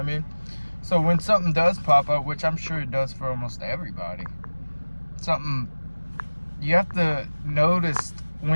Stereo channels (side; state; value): both; inverted; correlation -1.00